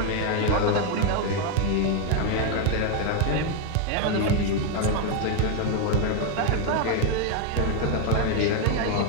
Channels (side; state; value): both; different; correlation 0.01